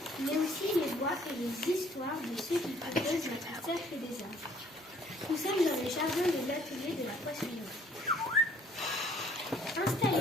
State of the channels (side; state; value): both; normal; correlation 0.60